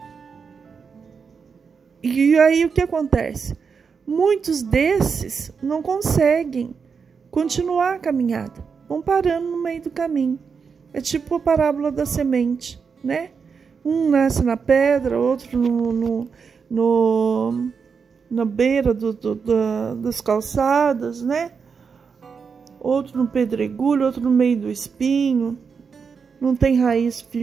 aí o que acontece? Muitos desses não conseguem continuar a caminhada, vão parando no meio do caminho. É tipo a parábola da semente, né? Um nasce na pedra, outro na beira das calçadas, né? Outro no pedregulho, outro no meio do espinho, não tem raiz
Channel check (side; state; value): left; quieter; 5.8 dB